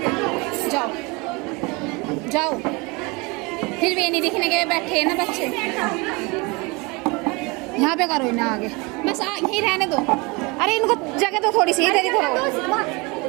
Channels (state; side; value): quieter; left; 27.0 dB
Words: जाओ जाओ। फिर भी नहीं दिखने के बैठे हैं ना बच्चे। यहाँ पे करो ना आगे, बस यहीं रहने दो। अरे इनको जगह तो थोड़ी सी इधर ही करो,